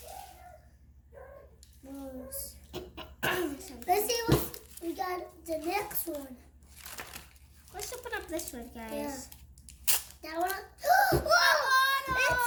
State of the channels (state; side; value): identical; both; correlation 1.00